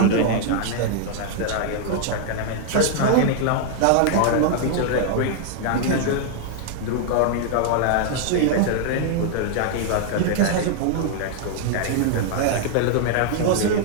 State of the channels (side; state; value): both; different; correlation -0.01